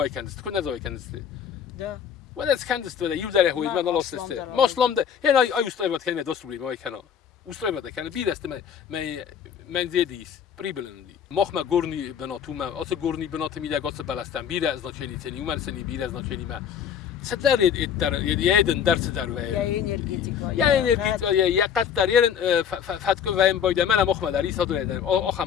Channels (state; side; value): quieter; right; 8.2 dB